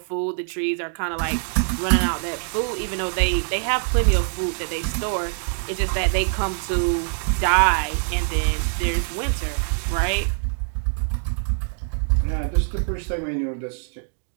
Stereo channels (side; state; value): left; silent; digital silence